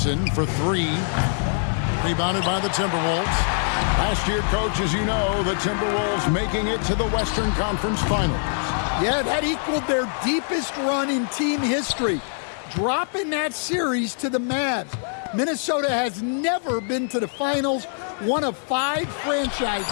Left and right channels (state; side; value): silent; right; digital silence